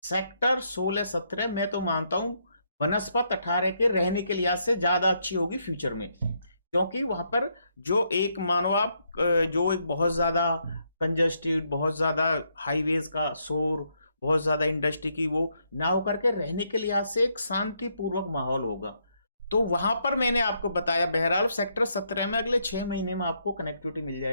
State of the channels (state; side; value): inverted; both; correlation -0.76